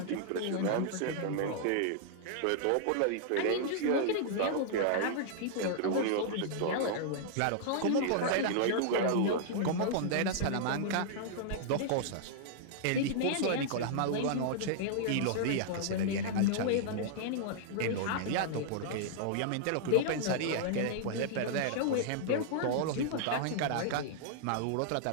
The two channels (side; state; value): both; different; correlation -0.01